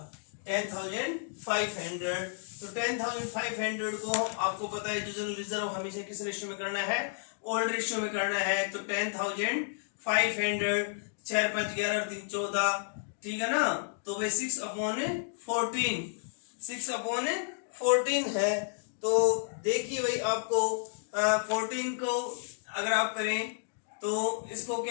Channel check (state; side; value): silent; right; digital silence